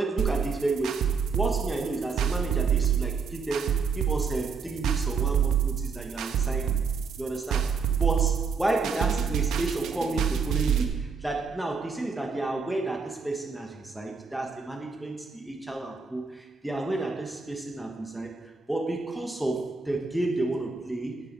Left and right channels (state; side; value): quieter; left; 4.9 dB